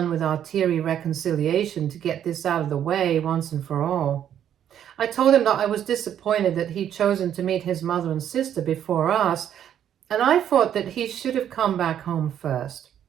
with our teary reconciliation to get this out of the way once and for all. I told him that I was disappointed that he'd chosen to meet his mother and sister before us, and I thought that he should have come back home first.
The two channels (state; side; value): quieter; left; 9.9 dB